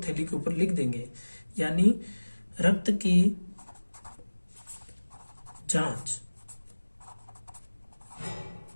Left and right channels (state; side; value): inverted; both; correlation -1.00